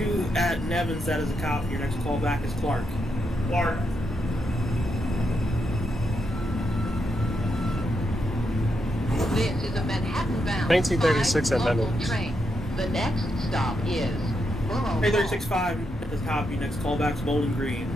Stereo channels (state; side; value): normal; both; correlation 0.82